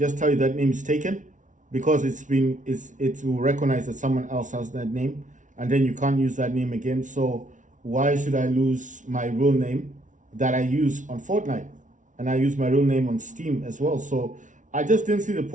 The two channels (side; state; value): left; late; 0.37 ms